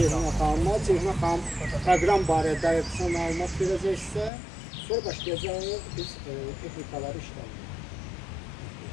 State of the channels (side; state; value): right; drops out; at 4.3 s